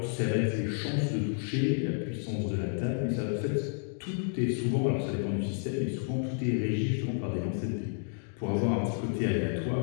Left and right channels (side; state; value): right; silent; 57 dB below the other